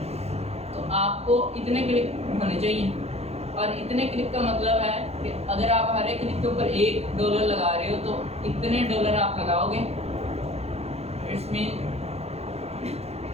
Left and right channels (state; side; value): late; left; 0.30 ms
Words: तो आपको इतने क्लिक होने चाहिए। और इतने क्लिक का मतलब है कि अगर आप हर एक क्लिक के ऊपर $1 लगा रहे हो तो इतने डॉलर आप लगाओगे, इट्स मीन